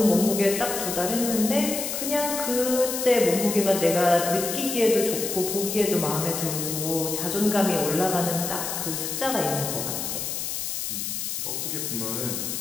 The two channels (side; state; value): left; noise; hiss, 3 dB below the sound